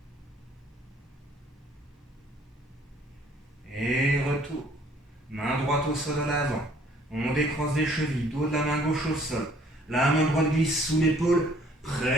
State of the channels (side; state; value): both; normal; correlation 0.59